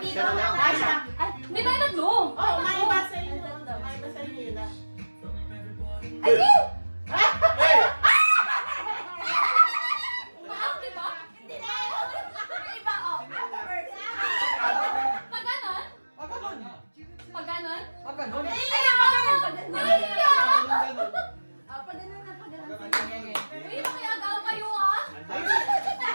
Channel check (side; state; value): both; inverted; correlation -1.00